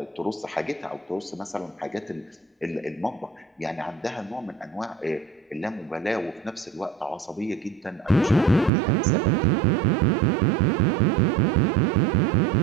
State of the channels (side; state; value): left; drops out; at 8.7 s